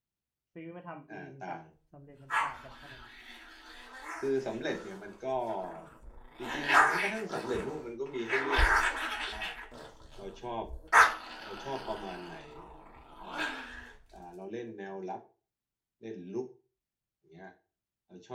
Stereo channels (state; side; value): identical; both; correlation 1.00